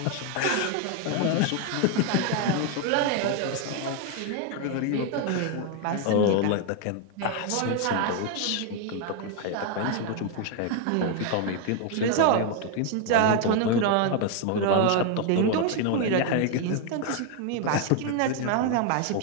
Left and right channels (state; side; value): different; both; correlation 0.01